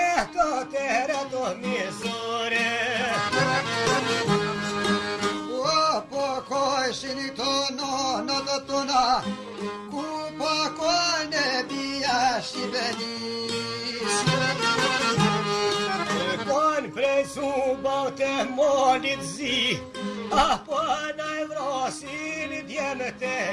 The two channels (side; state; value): both; identical; correlation 1.00